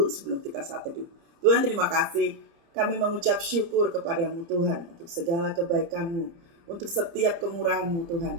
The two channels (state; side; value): late; left; 30 ms